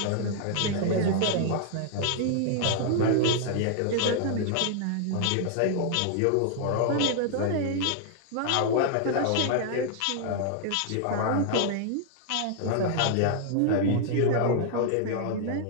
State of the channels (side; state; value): both; different; correlation 0.00